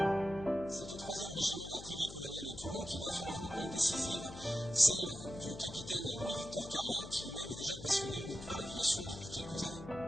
C'est au 3e régiment d'artillerie coloniale de Toulon qu'il va faire une rencontre décisive, celle du capitaine Louis-Victor Carlin, qui lui-même est déjà passionné par l'aviation depuis quelques années.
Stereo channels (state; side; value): noise; left; hum, 12 dB below the sound